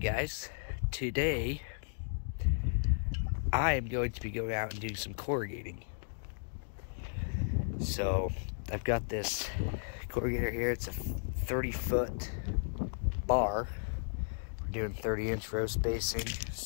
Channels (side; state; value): right; silent; digital silence